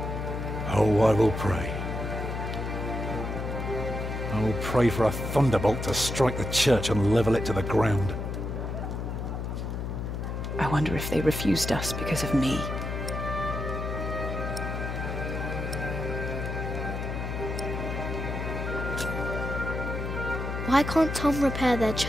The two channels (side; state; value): left; noise; hum, 4 dB below the sound